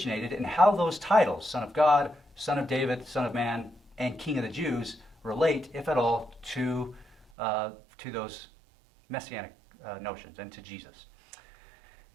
and how those titles, Son of God, Son of David, Son of Man, and King of the Jews, relate, if at all, to those messianic notions and to Jesus.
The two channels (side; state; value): left; drops out; at 7.2 s